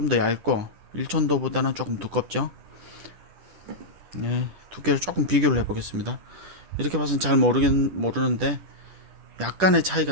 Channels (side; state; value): left; late; 10 ms